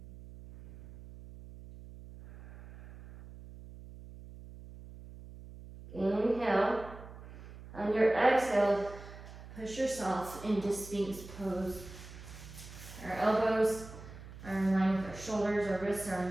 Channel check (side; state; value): right; noise; hum, 15 dB below the sound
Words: Inhale. On your exhale, push yourself into Sphinx pose. Our elbows are in line with our shoulders, our wrists are in